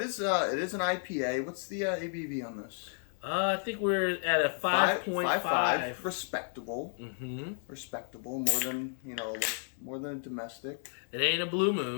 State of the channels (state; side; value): silent; right; 56 dB below the other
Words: is an IPA. What's the ABV on this? I think we're at a 5.5. Respectable. Mm-hmm. Respectable. More than a domestic. It ain't a Blue